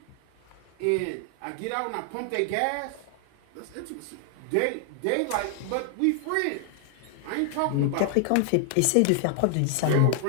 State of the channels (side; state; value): both; different; correlation 0.00